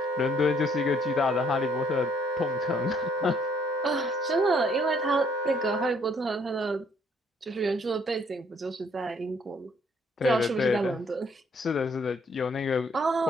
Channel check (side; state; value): both; normal; correlation 0.65